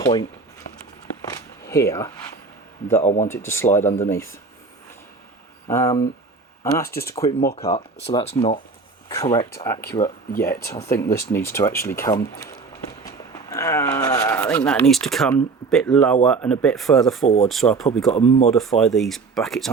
here that I want it to slide underneath. And that's just a quick mock-up, so that's not correct, accurate yet. I think this needs to actually come... I think that needs to come a bit lower and a bit further forward, so I've probably got to modify these brackets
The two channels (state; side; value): quieter; left; 4.4 dB